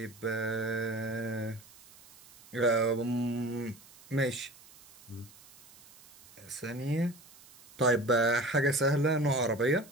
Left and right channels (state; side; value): noise; right; hiss, 23 dB below the sound